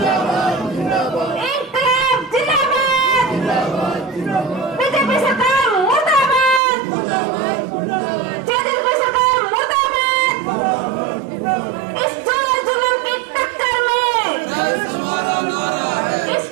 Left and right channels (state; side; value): drops out; left; at 6.6 s